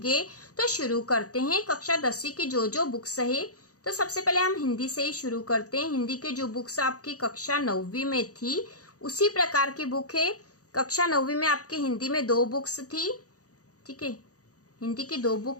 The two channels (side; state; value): right; late; 0.66 ms